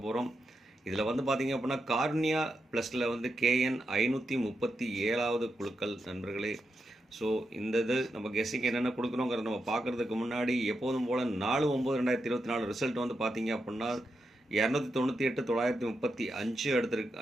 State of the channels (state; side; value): normal; both; correlation 0.85